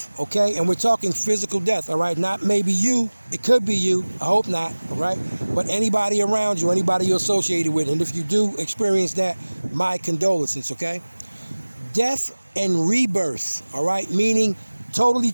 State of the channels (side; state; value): both; inverted; correlation -1.00